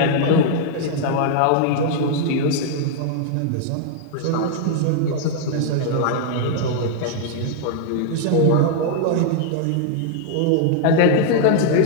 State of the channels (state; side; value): different; both; correlation 0.00